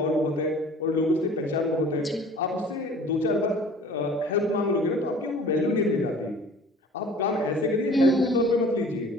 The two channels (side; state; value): both; normal; correlation 0.47